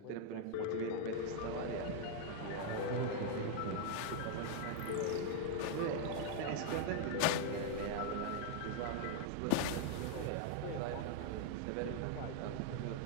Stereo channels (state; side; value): different; both; correlation 0.00